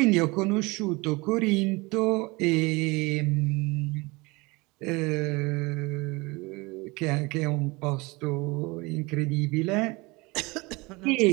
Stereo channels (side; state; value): left; quieter; 24.8 dB